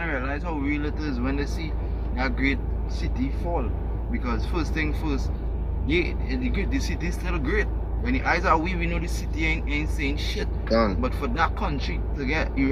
realize how real it is when they see that great city fall. Because first thing first, the city is still great. When the eyes are weak, we know the city ain't saying shit. But for that country to get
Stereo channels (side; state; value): both; identical; correlation 1.00